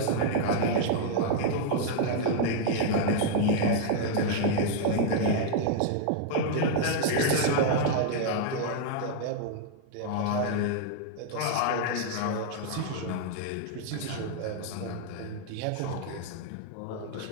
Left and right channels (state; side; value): different; both; correlation -0.01